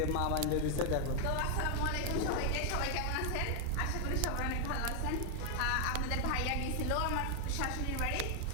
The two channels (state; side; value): different; both; correlation 0.00